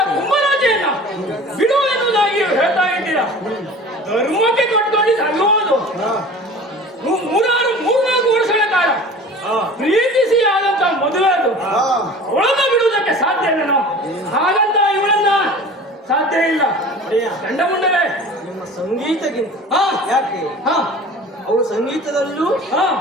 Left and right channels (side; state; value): both; normal; correlation 0.41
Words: ಕುಂಭರಾಜೆಯನ್ನ ಬಿಡು ಎನ್ನುವುದಾಗಿ ಹೇಳ್ತಾ ಇದ್ದೀರಾ. ಧರ್ಮಕ್ಕೆ ಕಟ್ಕೊಂಡಿದ್ದು ಅಲ್ಲೋದು. ಮೂರ್ನಾಲ್ಕು ವರ್ಷಗಳ ಕಾಲ ಪ್ರೀತಿಸಿ ಆದಂತ ಮದುವೆ ಅದು. ಅವಳನ್ನ ಬಿಡುವುದಕ್ಕೆ ಸಾಧ್ಯ ಇಲ್ಲ. ಹಾಗಂತ ಇವಳನ್ನ ಸಾಧ್ಯ ಇಲ್ಲ. ಚಂಡಮುಂಡರೇ, ನಿಮ್ಮ ಸಂಗೀತಕ್ಕಿಂತ ಯಾಕೆ ಅವಳು ಸಂಗೀತದಲ್ಲೂ